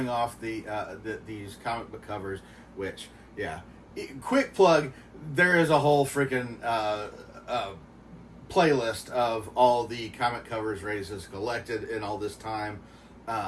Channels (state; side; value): identical; both; correlation 1.00